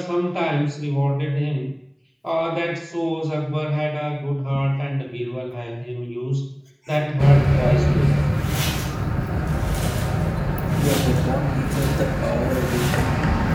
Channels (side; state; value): both; identical; correlation 1.00